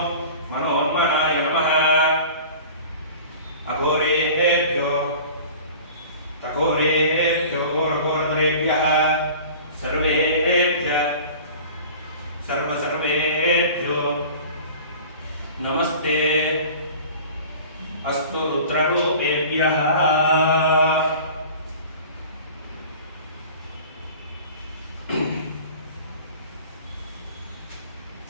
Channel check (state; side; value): inverted; both; correlation -0.42